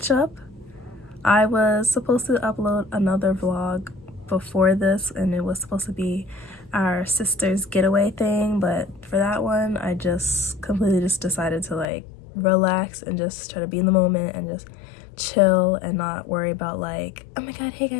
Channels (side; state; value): right; drops out; at 11.9 s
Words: I was supposed to upload another vlog before this, and it was supposed to be our sister's getaway thing, but for that one I just completely decided to like relax and just try to be in the moment and just chill and not worry about like, oh my god, hey